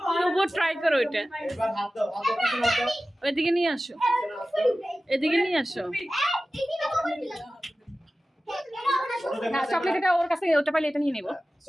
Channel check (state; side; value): normal; both; correlation 0.95